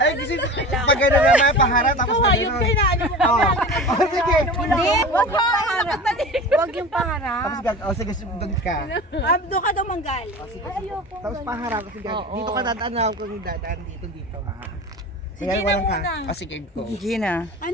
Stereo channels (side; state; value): both; normal; correlation 0.34